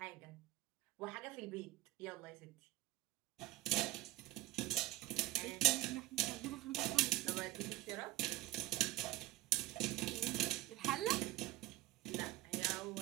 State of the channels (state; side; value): quieter; left; 16.8 dB